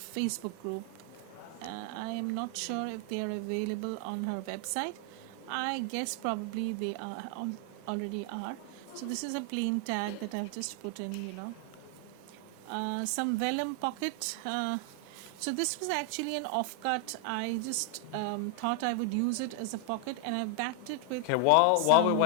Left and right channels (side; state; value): both; different; correlation 0.00